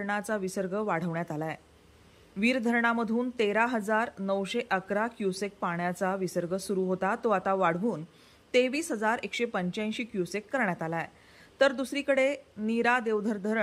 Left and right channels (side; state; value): both; identical; correlation 1.00